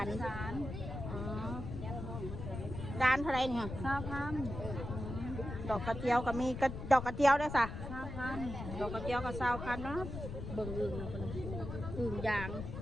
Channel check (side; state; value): left; noise; rumble, 7 dB below the sound